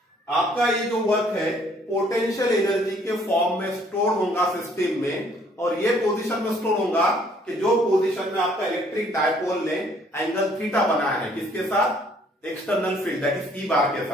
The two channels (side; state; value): both; normal; correlation 0.62